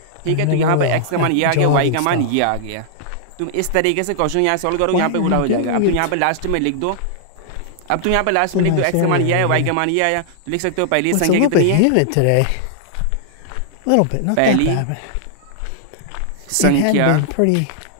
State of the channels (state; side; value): different; both; correlation -0.01